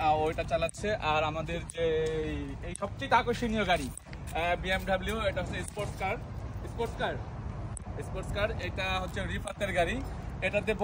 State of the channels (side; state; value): both; identical; correlation 1.00